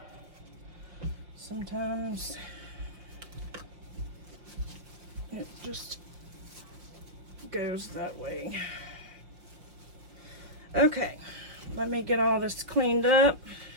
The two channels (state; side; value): late; left; 5.6 ms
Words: sometimes it just goes that way. Okay, let me get all this cleaned up.